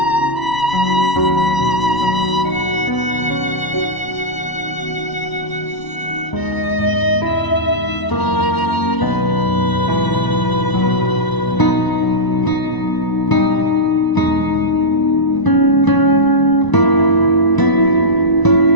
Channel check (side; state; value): right; late; 1.0 ms